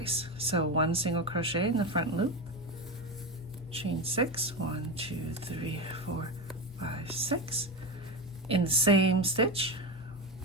So 1 single crochet in the front loop, chain 6, 1, 2, 3, 4, 5, 6. In the same stitch,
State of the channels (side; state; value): both; normal; correlation 0.18